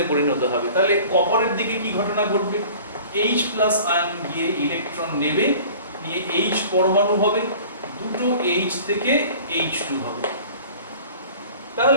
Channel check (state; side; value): inverted; both; correlation -0.45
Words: পরিণত হবে। তাহলে কপারের দিকে কি ঘটনা ঘটবে? H+ আয়ন গিয়ে ইলেকট্রন নেবে, নিয়ে H পরমাণু হবে, দুটো H থেকে H2 হবে।